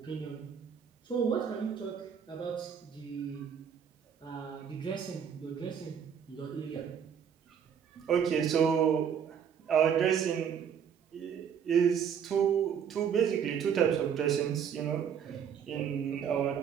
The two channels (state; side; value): quieter; left; 7.9 dB